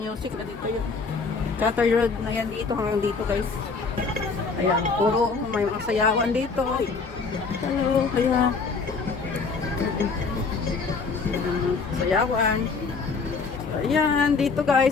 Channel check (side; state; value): right; quieter; 4.6 dB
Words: na dito yun. Chartered Road na yan dito hanggang dito guys. Ayan, puro may mga sayawan dito. Hello, ayan. Sayawan. Ayan, dito